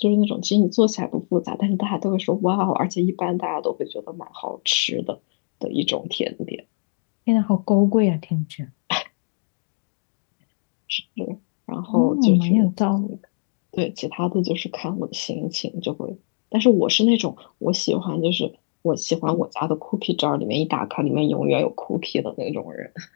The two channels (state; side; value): silent; right; 56 dB below the other